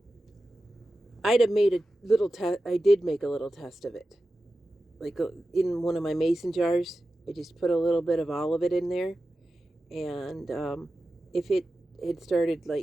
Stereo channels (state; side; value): normal; both; correlation 0.93